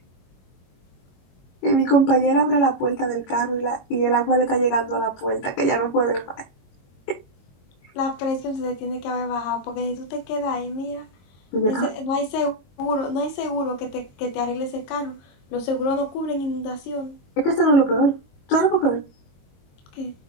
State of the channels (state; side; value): late; right; 22 ms